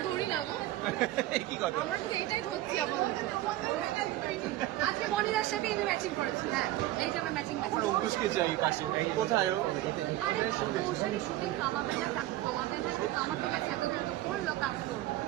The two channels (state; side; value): quieter; left; 15.6 dB